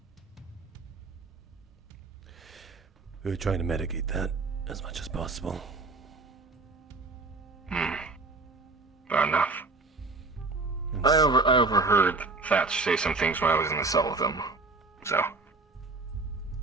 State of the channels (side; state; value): left; quieter; 3.7 dB